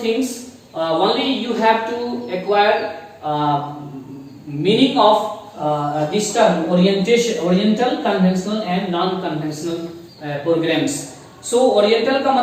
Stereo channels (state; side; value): identical; both; correlation 1.00